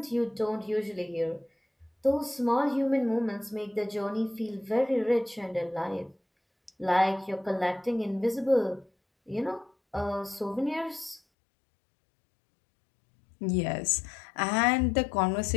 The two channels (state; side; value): drops out; right; at 11.2 s